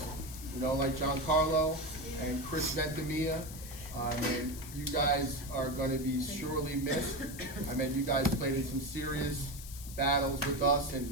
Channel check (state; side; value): noise; left; hiss, 13 dB below the sound